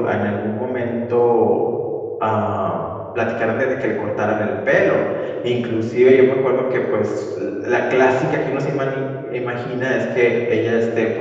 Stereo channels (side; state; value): both; identical; correlation 1.00